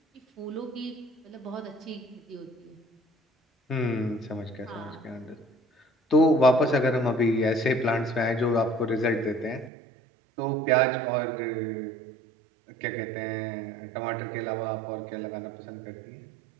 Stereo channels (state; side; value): drops out; left; at 9.7 s